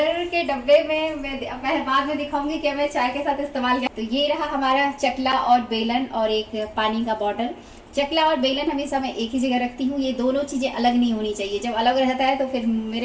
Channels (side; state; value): both; identical; correlation 1.00